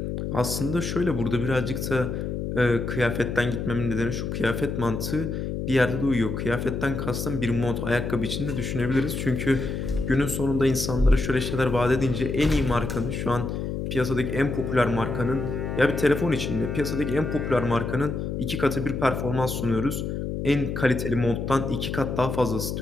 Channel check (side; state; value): left; noise; hum, 3 dB below the sound